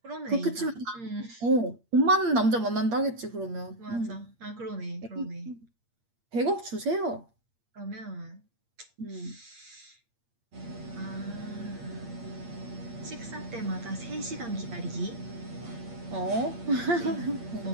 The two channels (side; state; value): left; late; 8.6 ms